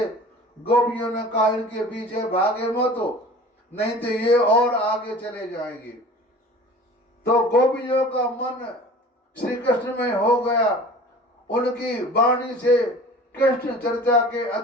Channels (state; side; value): normal; both; correlation 0.42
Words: गोपियों ने कहा इनके पीछे भागे मत हो, नहीं तो ये और आगे चले जाएंगे। तो गोपियों का मन श्री कृष्ण में हो गया। उनकी वाणी से कृष्ण चर्चा के